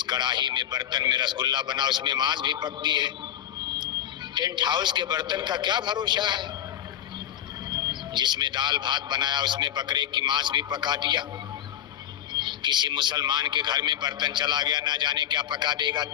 कढ़ाई में बर्तन में रसगुल्ला बना उसमें मांस भी पकती है। टेंट हाउस के बर्तन का क्या भरोसा है? जिसमें दाल भात बनाया उसमें बकरे की मांस भी पका दिया। किसी मुसलमान के घर में बर्तन चला गया, ना जाने क्या पका देगा।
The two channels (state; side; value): quieter; right; 11.1 dB